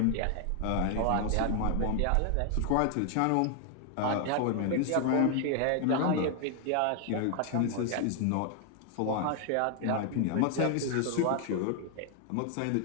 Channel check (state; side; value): different; both; correlation 0.00